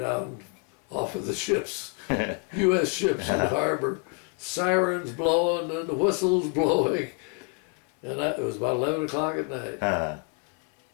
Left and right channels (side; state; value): right; quieter; 33.1 dB